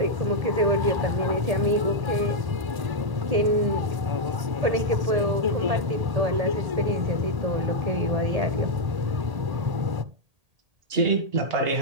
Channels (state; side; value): late; left; 1.8 ms